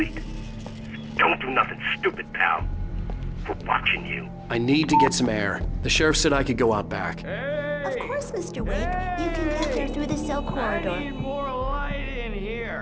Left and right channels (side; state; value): both; identical; correlation 1.00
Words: Don't do nothing stupid, pal. We're watching you. I need to get some air. The sheriff said I could go out back. Of course, Mr. Wake. You can get there through the cell corridor. I need more light in